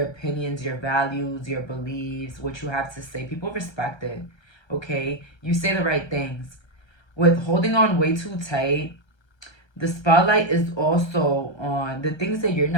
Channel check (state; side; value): late; right; 1.3 ms